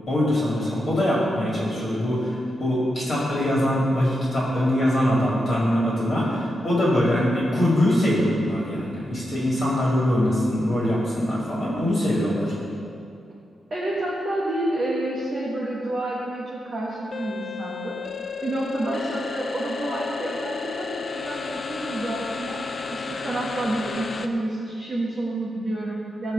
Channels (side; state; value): both; normal; correlation 0.86